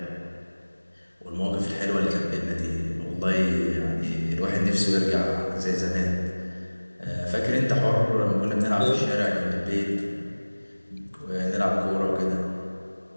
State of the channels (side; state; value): both; inverted; correlation -1.00